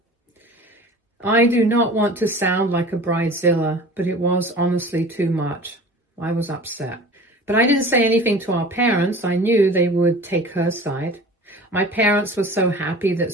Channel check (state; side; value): normal; both; correlation 0.41